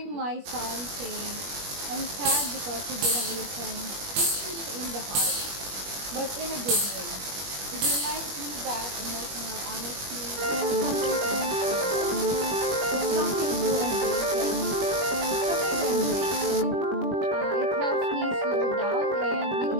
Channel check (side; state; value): left; late; 21 ms